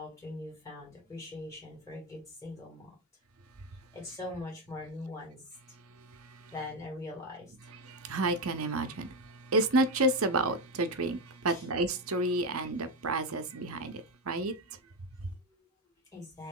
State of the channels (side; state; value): both; normal; correlation 0.11